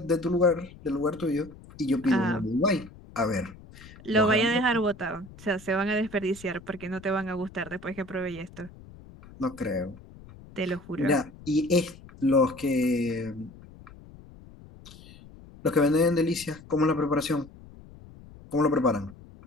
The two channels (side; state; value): left; noise; rumble, 20 dB below the sound